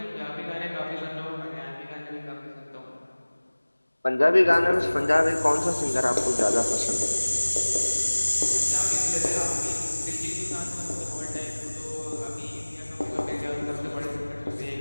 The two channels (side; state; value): both; inverted; correlation -1.00